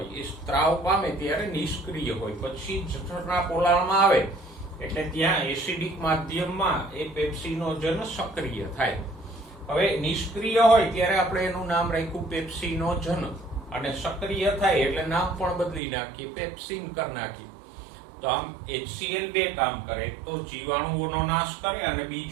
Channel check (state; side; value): drops out; left; at 15.8 s